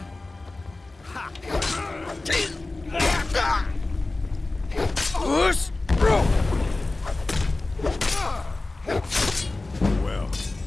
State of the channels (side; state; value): right; quieter; 3.1 dB